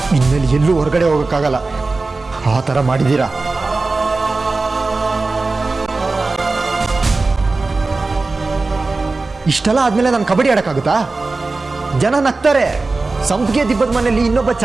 ಇನ್ಮೇಲೆ ಎಲ್ಲೂ ಹೊರಗಡೆ ಹೋಗೋಕ್ಕಾಗಲ್ಲ. ಆ ಥರ ಮಾಡಿದ್ದೀರಾ. ಇಷ್ಟೆಲ್ಲ ಆದ್ಮೇಲೆ ನಾನು ಕಬಡ್ಡಿ ಆಡೋಕ್ಕಾಗುತ್ತಾ? ಜನ ನಗ್ತಾರೆ, ಸಂಪಿಗೆ ದಿಬ್ಬದ ಮನೆಯಲ್ಲಿ ಇನ್ನೊಬ್ಬ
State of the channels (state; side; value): quieter; left; 3.6 dB